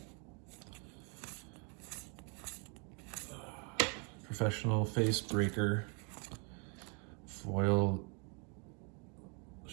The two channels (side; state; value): left; quieter; 36.2 dB